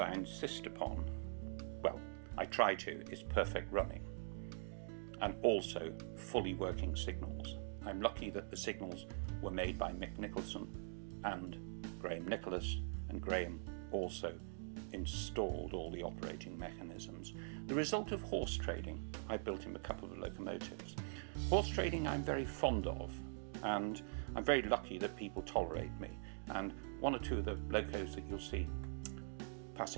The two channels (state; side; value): silent; left; digital silence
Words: insist upon, well, I try to, is perfect running, and also fully working signals. I'm lucky that the signals were made by Mick Nicholson and Graham Nicholas, and Graham also installed all the operating mechanisms. The result of horse trading, I built him a couple of locomotives. Horse trading I'm very fond of, and I'm very lucky that people tolerate me, and one or two of the locos that you'll see